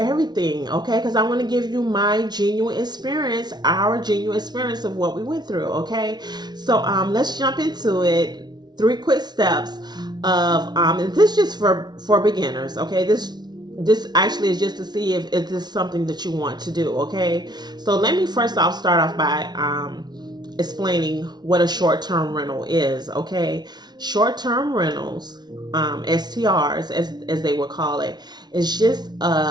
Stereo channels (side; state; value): left; late; 0.20 ms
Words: okay? Because I want to give you my genuine experience, our genuine experience of what we went through, okay? So let's jump into it. Three quick steps of and this just for beginners, okay? This actually is just to see if this is something that you want to do, okay? So let me first off start off by explaining what a short-term rental is, okay? Short-term rentals, STRs as they would call it, is just